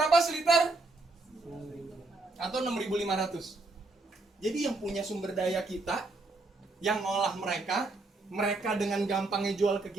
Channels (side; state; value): left; quieter; 3.3 dB